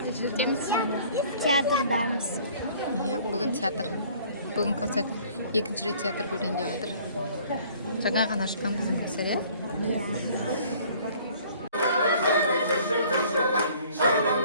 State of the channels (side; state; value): both; inverted; correlation -0.54